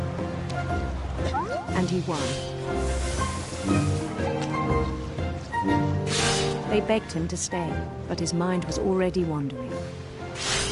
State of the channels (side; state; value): both; identical; correlation 1.00